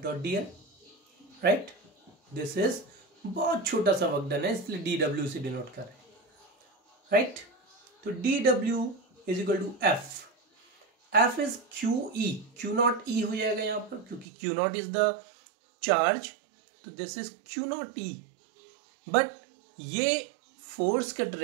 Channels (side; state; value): left; drops out; at 14.2 s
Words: dot dl, right. This is बहुत छोटा सा वर्कडन है इसलिए dw से डिनोट कर रहे हैं, राइट. तो dw is equal to F is QE, Q naught E हो जाएगा यहाँ पर क्योंकि Q naught is the charge. तो this is Q naught E. But ये फोर्स का